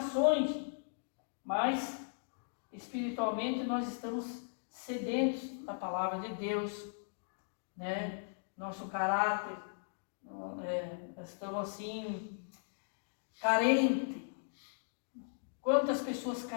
mas espiritualmente nós estamos sedentos da palavra de Deus, né? Nosso caráter, estamos assim, carente. Quantas pessoas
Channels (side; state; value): right; silent; digital silence